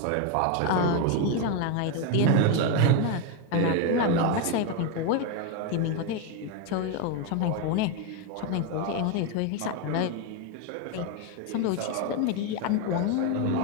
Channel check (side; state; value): both; different; correlation 0.02